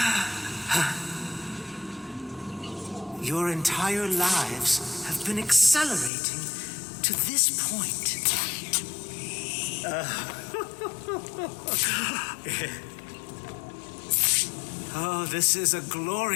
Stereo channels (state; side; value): drops out; right; at 6.1 s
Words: Your entire lives have been accelerating to this point. Oh, this is a